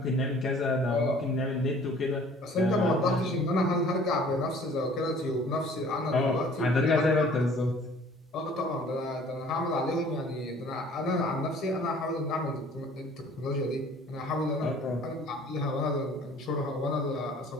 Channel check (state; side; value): normal; both; correlation 0.52